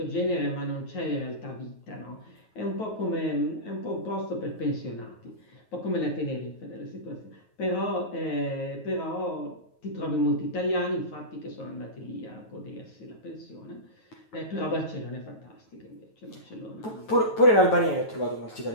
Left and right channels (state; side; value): late; right; 9.3 ms